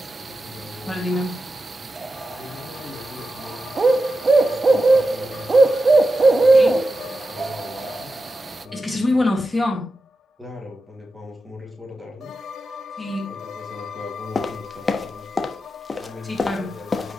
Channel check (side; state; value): both; normal; correlation 0.91